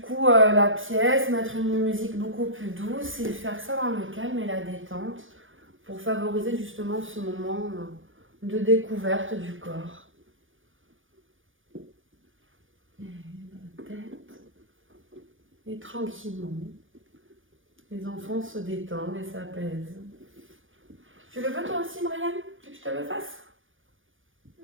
coup la pièce, mettre une musique beaucoup plus douce et faire ça dans le calme et la détente pour favoriser justement ce moment de découverte du corps. Et la tête. Et tranquillement, les enfants se détendent et s'apaisent. Tu le veux toi aussi, Brian? Tu veux que je te le fasse?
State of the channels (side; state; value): left; late; 0.58 ms